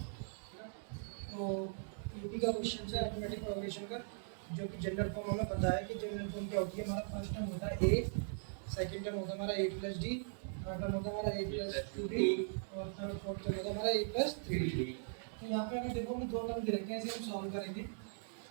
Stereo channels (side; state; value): left; silent; digital silence